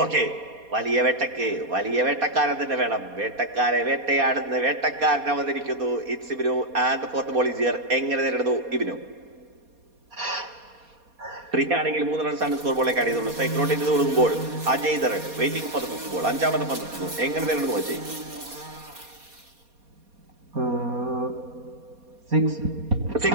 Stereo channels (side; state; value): left; late; 4.2 ms